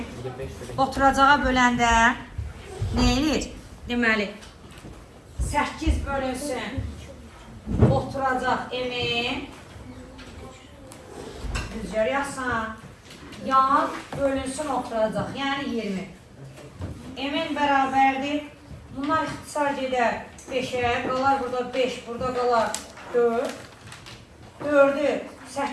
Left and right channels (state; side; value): identical; both; correlation 1.00